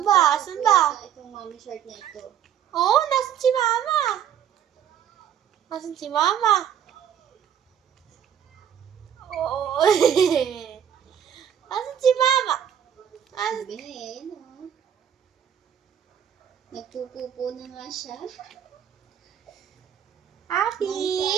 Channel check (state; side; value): quieter; left; 9.3 dB